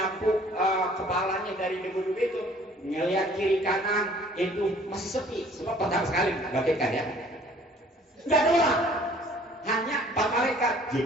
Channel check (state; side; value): normal; both; correlation 0.54